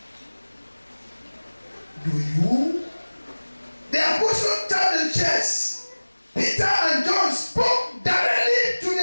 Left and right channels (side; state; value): both; inverted; correlation -1.00